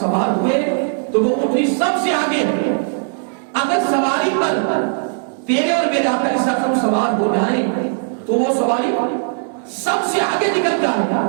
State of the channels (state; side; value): silent; left; digital silence